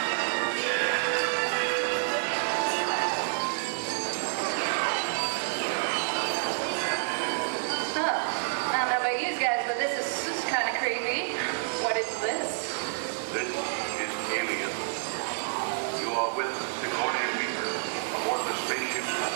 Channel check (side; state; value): left; silent; 59 dB below the other